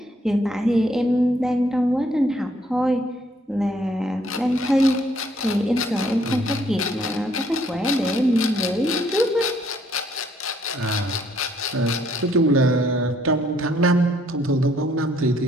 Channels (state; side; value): normal; both; correlation 0.66